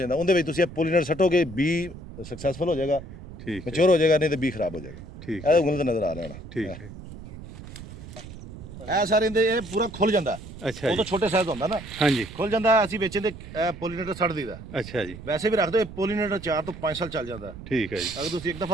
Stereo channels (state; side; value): noise; right; rumble, 14 dB below the sound